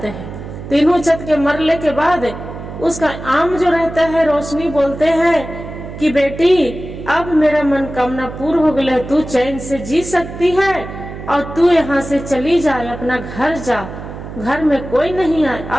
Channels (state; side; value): noise; right; hum, 11 dB below the sound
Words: हैं। तीनों चत के मरने के बाद उसका आम जो रहता है रोशनी बोलते हैं कि बेटी अब मेरा मनोकामना पूर्ण हो गया, तू चैन से जी सकती है और तू यहाँ से चली जाए, अपना घर जा, घर में कोई नहीं आए,